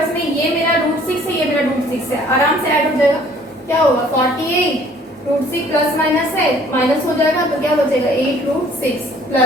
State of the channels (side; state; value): both; normal; correlation 0.56